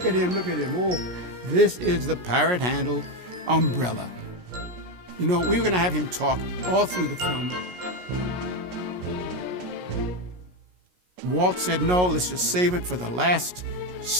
at him. Oh, this is the parrot handle umbrella. You know, we were going to have him talk all through the film. Walt said, no, let's just save it for the last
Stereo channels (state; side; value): late; left; 17 ms